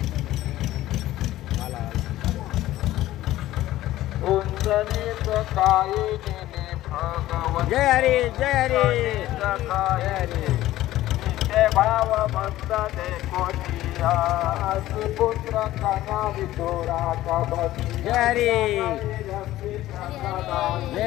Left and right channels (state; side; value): quieter; right; 15.1 dB